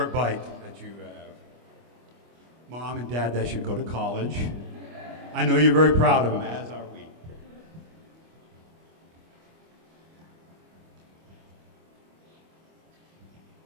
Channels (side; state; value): left; late; 25 ms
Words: bike that you have. Mom and Dad, that should go to college. I know you're very proud of him, as are we.